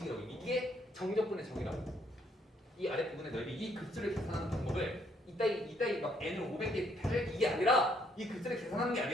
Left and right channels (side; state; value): both; normal; correlation 0.69